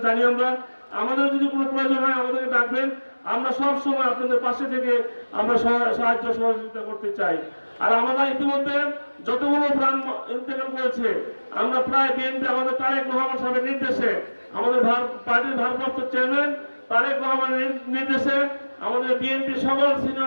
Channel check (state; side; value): inverted; both; correlation -1.00